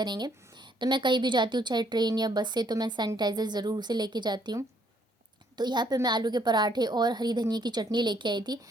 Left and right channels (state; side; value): normal; both; correlation 0.67